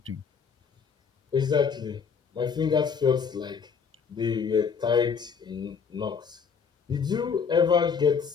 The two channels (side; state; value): right; quieter; 6.2 dB